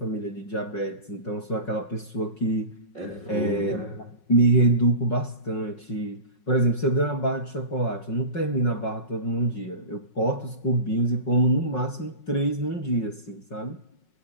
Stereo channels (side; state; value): right; late; 5.5 ms